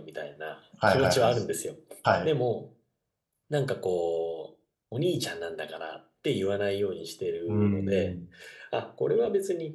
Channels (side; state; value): both; identical; correlation 1.00